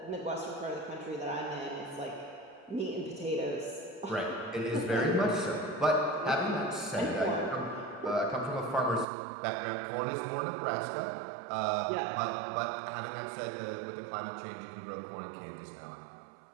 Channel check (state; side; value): drops out; left; at 9.1 s